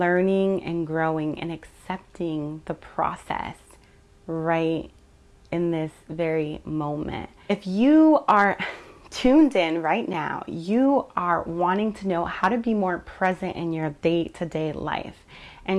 and growing and accepting the process right in this very moment. If you are tuned in right now, you are wanting to know how to be more present in your day-to-day life.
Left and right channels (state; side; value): identical; both; correlation 1.00